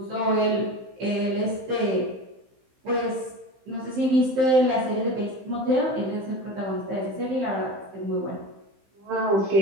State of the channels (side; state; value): left; late; 15 ms